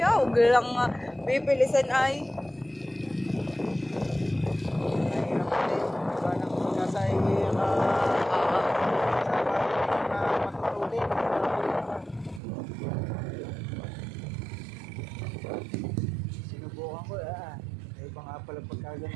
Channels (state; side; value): drops out; left; at 12.4 s